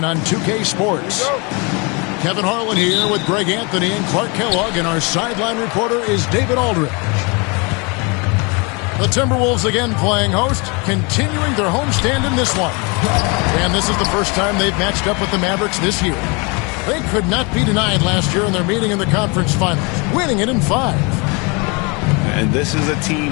on 2K Sports. Kevin Harlan here with Greg Anthony and Clark Kellogg, and our sideline reporter is David Aldridge. The Timberwolves again playing host, continuing their homestand in this one. And this is the first time they've matched up with the Mavericks this year. They could not be denied last year in their meeting in the conference finals, winning it in 5. And this is a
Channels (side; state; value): right; quieter; 30.4 dB